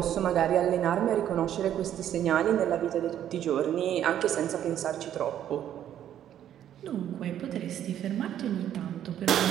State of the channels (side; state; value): left; quieter; 10.7 dB